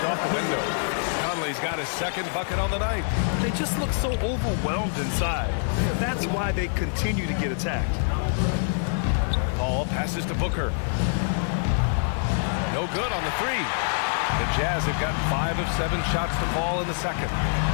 off the window. Conley's got his second bucket on the night. They just look so overwhelmed inside. Yeah, that's why they continue to get attacked. Paul passes to Booker. No good on the three. The Jazz have gotten 5 of 7 shots to fall in the second.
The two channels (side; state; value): right; silent; digital silence